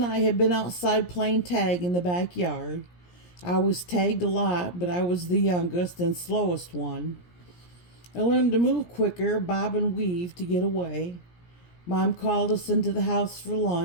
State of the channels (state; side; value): late; right; 17 ms